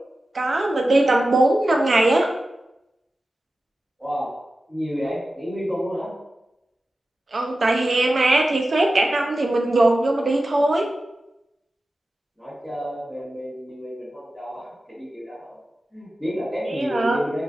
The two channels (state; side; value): normal; both; correlation 0.94